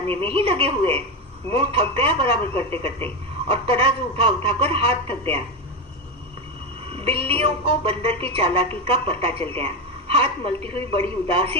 में ही लगे हुए। मुंह थक गया बराबर करते करते, और तराजू उठा कर हाथ थक गया। बिल्लियों को बंदर की चालाकी का पता चल गया। हाथ मलती हुई बड़ी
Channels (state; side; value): normal; both; correlation 0.12